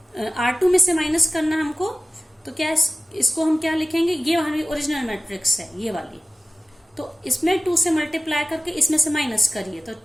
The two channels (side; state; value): both; normal; correlation 0.96